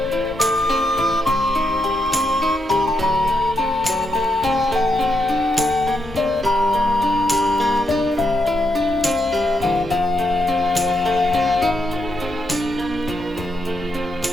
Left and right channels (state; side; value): normal; both; correlation 0.81